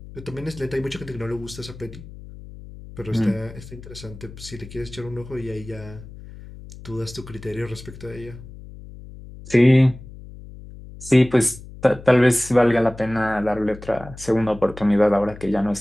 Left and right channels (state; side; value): noise; left; hum, 16 dB below the sound